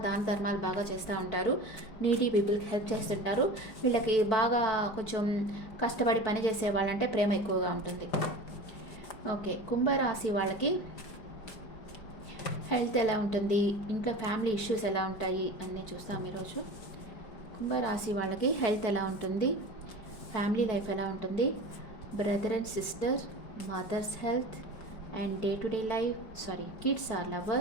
దాన ధర్మాలు బాగా చేస్తూ ఉంటారు. నీడీ పీపుల్కి హెల్ప్ చేస్తుంటారు. వీళ్ళకి బాగా కొంచెం కష్టపడి పని చేసే వాళ్ళంటే ప్రేమ ఎక్కువగా ఉంటుంది. ఓకే, కుంభరాశి వాళ్ళకి హెల్త్ ఎలా ఉంటుంది, ఇంట్లో ఫ్యామిలీ ఇష్యూస్ ఎలా ఉంటాయి అన్నీ చూస్తాం ఈరోజు. కుంభరాశి వాళ్ళకి హెల్త్ ఎలా ఉంటుంది, ఫ్యామిలీ లైఫ్ ఎలా ఉంటుంది, brother and sister, mothers health and day to day life, kids or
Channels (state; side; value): late; right; 4.6 ms